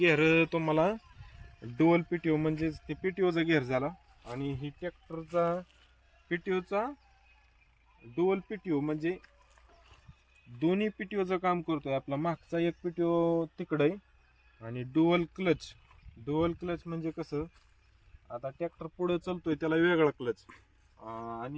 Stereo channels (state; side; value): identical; both; correlation 1.00